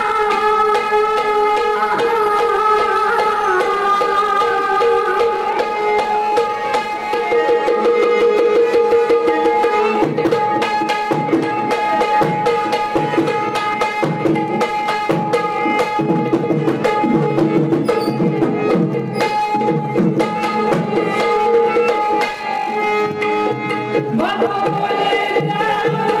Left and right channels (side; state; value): both; identical; correlation 1.00